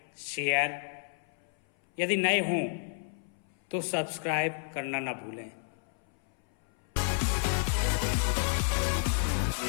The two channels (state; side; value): silent; right; 57 dB below the other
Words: शेयर, यदि नए हों तो सब्सक्राइब करना ना भूलें।